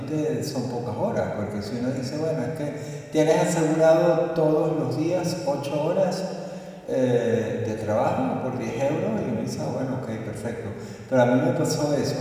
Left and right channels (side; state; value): both; identical; correlation 1.00